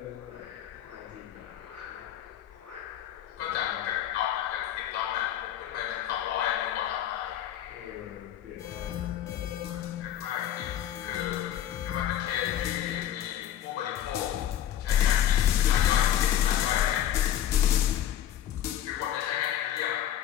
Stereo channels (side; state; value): right; quieter; 11.1 dB